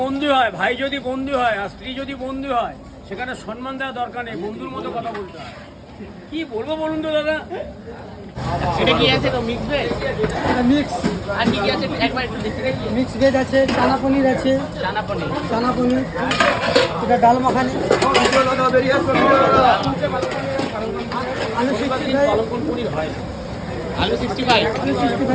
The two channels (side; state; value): both; identical; correlation 1.00